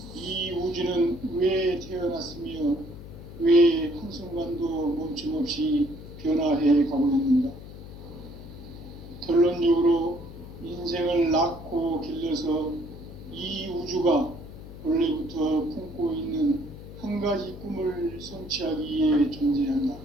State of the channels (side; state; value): left; noise; hum, 14 dB below the sound